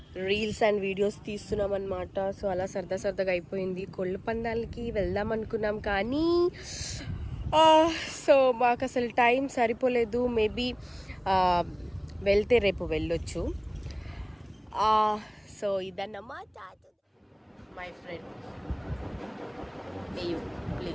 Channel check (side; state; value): both; identical; correlation 1.00